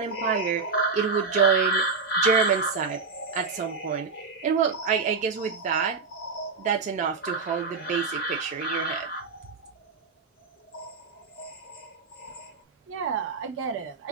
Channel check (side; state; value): left; quieter; 4.6 dB